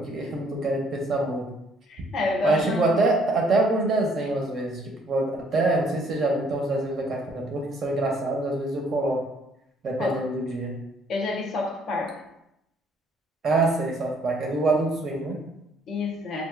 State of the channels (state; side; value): normal; both; correlation 0.63